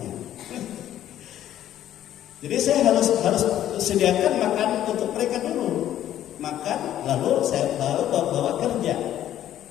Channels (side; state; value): right; quieter; 11.8 dB